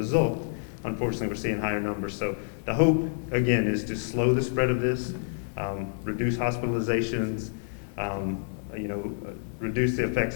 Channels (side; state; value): right; silent; digital silence